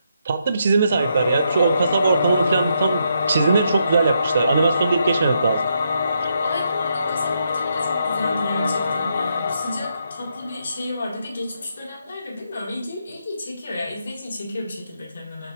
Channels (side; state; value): both; inverted; correlation -0.79